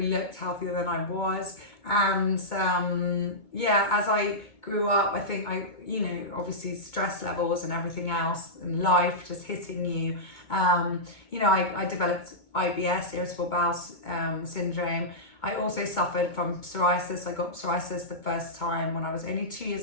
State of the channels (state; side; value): late; right; 2.2 ms